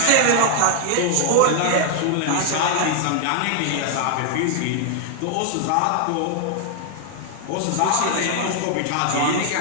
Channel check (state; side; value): different; both; correlation 0.00